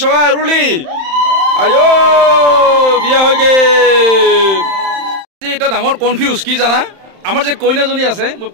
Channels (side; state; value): left; late; 31 ms